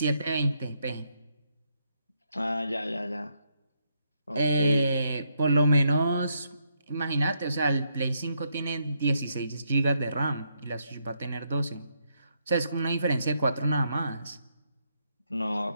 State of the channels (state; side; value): inverted; both; correlation -0.77